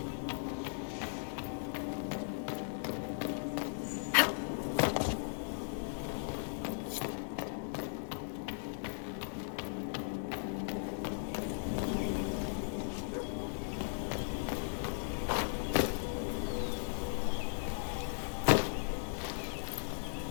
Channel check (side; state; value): right; silent; digital silence